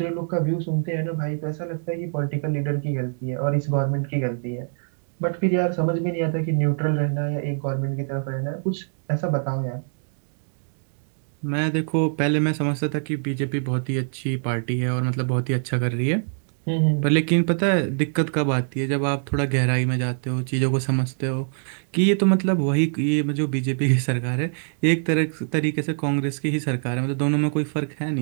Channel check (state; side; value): silent; left; digital silence